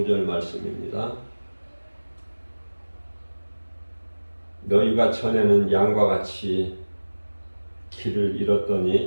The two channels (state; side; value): inverted; both; correlation -1.00